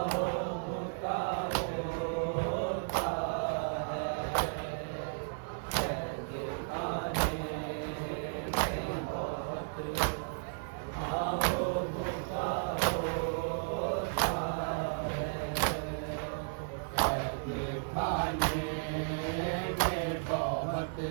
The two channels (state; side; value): silent; left; digital silence